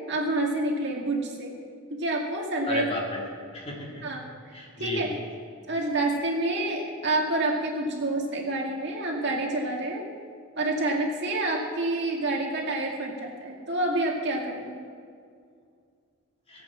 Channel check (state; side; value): normal; both; correlation 0.07